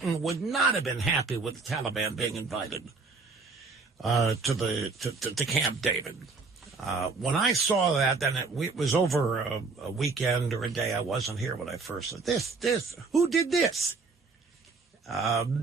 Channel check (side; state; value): left; quieter; 4.2 dB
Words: would not have been happy with the Taliban being invited to Camp David. When I saw that, then it was over a weekend or a day. I wasn't here when I first said this. Who did this?